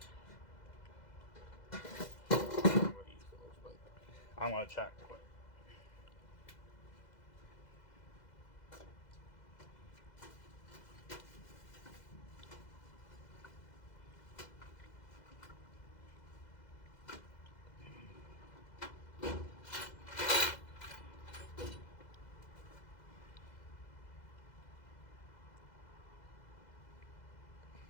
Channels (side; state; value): right; late; 2.0 ms